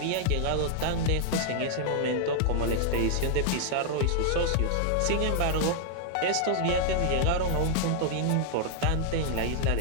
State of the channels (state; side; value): different; both; correlation 0.00